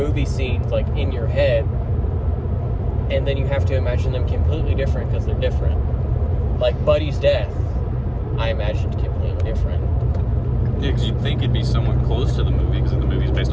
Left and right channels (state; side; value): identical; both; correlation 1.00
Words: scenes, like, in your head, and then you have to imagine them completely different because they're different. Like, Buddy's death, I imagined completely different. Yeah, because you'd think it'd be somewhat close to the movie, because the movie's based